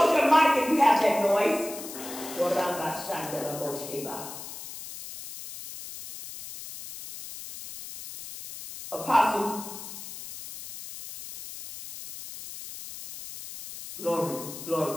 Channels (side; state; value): left; noise; hiss, 12 dB below the sound